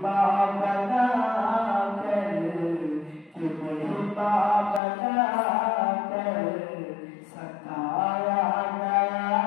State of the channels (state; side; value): drops out; right; at 4.8 s